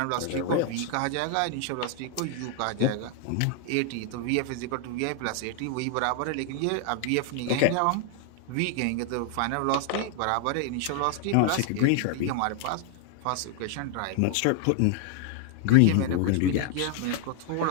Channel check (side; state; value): both; different; correlation 0.00